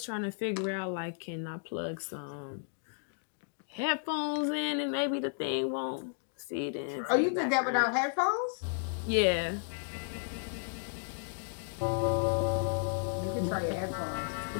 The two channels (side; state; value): right; silent; digital silence